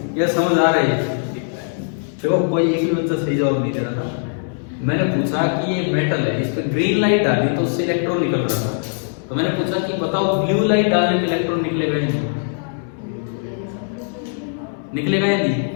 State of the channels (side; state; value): right; silent; digital silence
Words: ये समझ आ रही है? देखो कोई एक भी बच्चा सही जवाब नहीं दे रहा था। मैंने पूछा कि ये मेटल है, इस पे ग्रीन लाइट डाली तो उससे इलेक्ट्रॉन निकल रहा था, तो मैंने पूछा कि बताओ ब्लू लाइट डालने पे इलेक्ट्रॉन निकलेगा या नहीं? निकलेगा या नहीं?